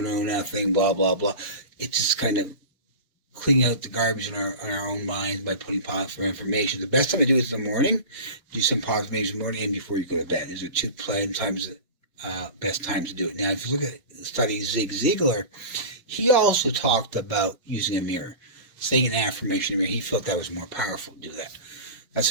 know nothing. Blah blah blah. It's just kind of cleaning out the garbage in our own minds by putting positive affirmations. The best time to do it is in the morning. Do some positive affirmations in the morning and before you go to bed. These are two best times to do it. Now, if you look at the study of Zig Ziglar, he also talked about using a mirror, saying an affirmation in a mirror. He felt that was more powerful to do that. That's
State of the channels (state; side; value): inverted; both; correlation -0.31